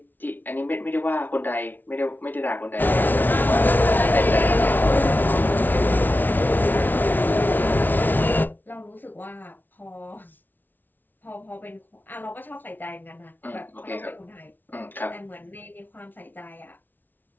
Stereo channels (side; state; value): right; late; 0.087 ms